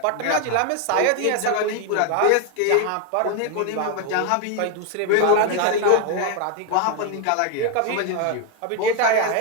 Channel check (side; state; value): both; different; correlation 0.01